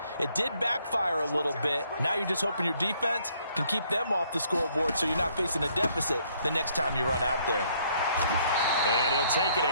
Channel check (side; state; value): both; inverted; correlation -0.66